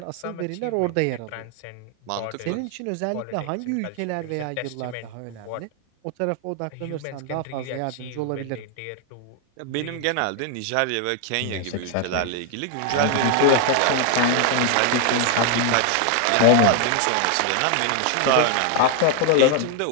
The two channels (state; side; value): different; both; correlation 0.00